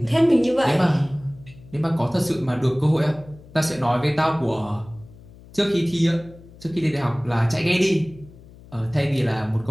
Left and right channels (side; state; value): left; noise; hum, 21 dB below the sound